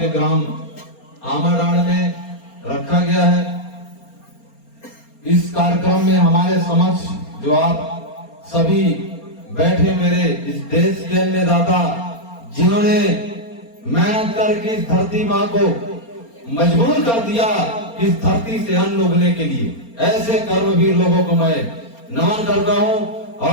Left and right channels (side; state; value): right; late; 4.3 ms